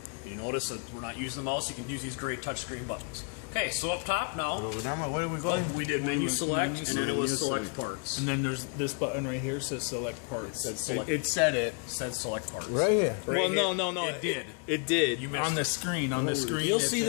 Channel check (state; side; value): quieter; right; 36.8 dB